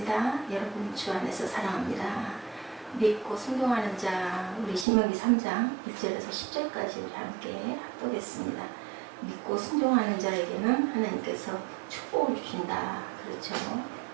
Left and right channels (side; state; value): left; drops out; at 4.9 s